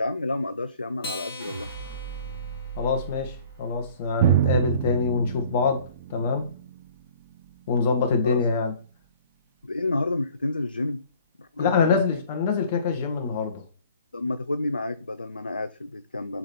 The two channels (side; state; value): both; inverted; correlation -0.53